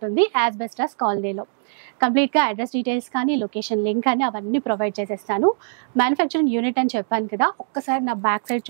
యాజ్ బెస్ట్ యాజ్ కాలనీలో. కంప్లీట్గా అడ్రస్ డీటెయిల్స్ కానీ, లొకేషన్ లింక్ కానీ అవన్నీ ప్రొవైడ్ చేసేస్తాను. మ్యానుఫ్యాక్చరింగ్ యూనిట్ అని చెప్పాను కదా, ఒక్కసారి నా బ్యాక్ సైడ్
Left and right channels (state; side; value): silent; left; digital silence